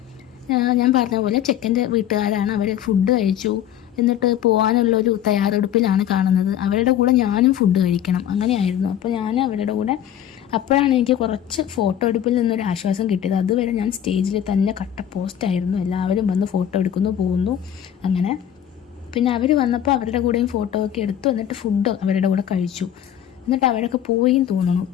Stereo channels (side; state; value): right; quieter; 10.4 dB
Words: ഞാൻ പറഞ്ഞ പോലെ ചെക്കൻ്റെ വീട്ടുകാരാണ്. അവർ ഫുഡ് കഴിച്ചു, എന്നിട്ട് പോകാനുള്ളൊരു തയ്യാറെടുപ്പിലാണ് കാണുന്നത്. അവരുടെ കൂടെ ഞാനും ഫുഡ് കഴിക്കണം, അങ്ങനെയായിരുന്നു. അപ്പോൾ ഞാൻ അവരുടെ കൂടെ, അപ്പോഴാണ് എനിക്ക് കുറച്ച് ഫോട്ടോ എടുപ്പിൽ നിന്നൊരു ആശ്വാസം കിട്ടിയത്. അതുവരെ ഞാൻ സ്റ്റേജിൽ തന്നെ കട്ട പോസ്റ്റായിരുന്നു. എല്ലാവരും വന്ന് ഫോട്ടോ എടുക്കുന്നു, പോകുന്നു, അങ്ങനെ. പിന്നെ അവർ വന്നപ്പോൾ അവരുടെ കൂടെയും ഫോട്ടോ ഒക്കെ എടുത്തു. എന്നിട്ട് ഫുഡ് അവരുടെ കൂടെ കഴിച്ചു. എന്നിട്ട് അവരൊക്കെ പോയിന്ന് തോന്നുന്നു.